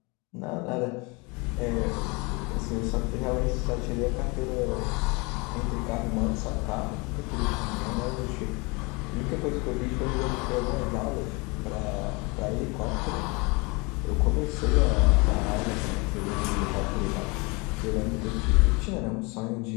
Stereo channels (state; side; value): quieter; right; 27.9 dB